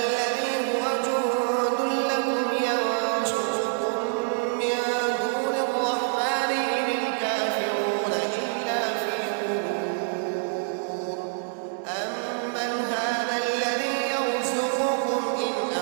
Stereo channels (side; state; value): left; silent; digital silence